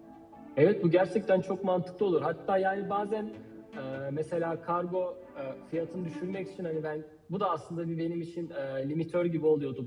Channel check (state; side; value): identical; both; correlation 1.00